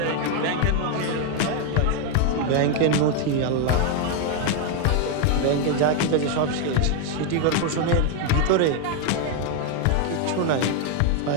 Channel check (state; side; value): different; both; correlation 0.01